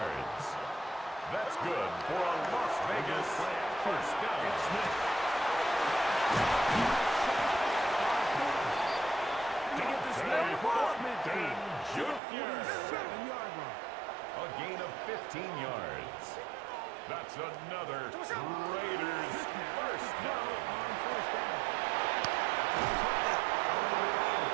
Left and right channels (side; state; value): left; drops out; at 12.2 s